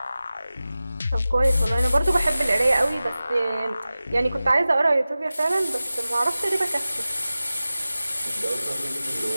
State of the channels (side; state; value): both; inverted; correlation -0.96